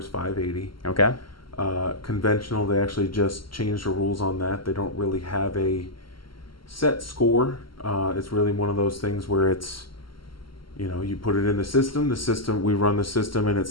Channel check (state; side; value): late; right; 0.73 ms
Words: 580. Okay. Conventional, they actually just changed the rules on that. They don't really have a set score. It's really one of those things where it's, you put it in the system, we run the system and it